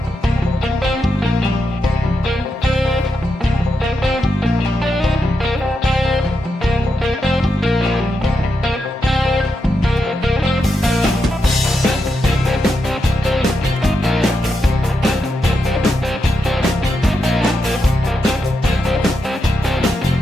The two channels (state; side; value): normal; both; correlation 0.85